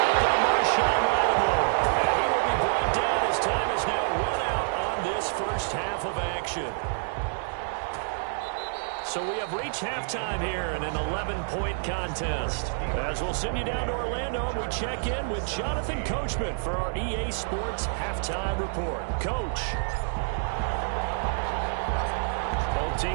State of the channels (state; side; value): silent; left; digital silence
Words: by Marshawn Lattimore. And he will be brought down as time is now run out on this first half of action. So we have reached halftime here in an 11-point contest. As we'll send you down to Orlando, and we check in with Jonathan Coachman for our EA Sports Halftime Report. Coach. Both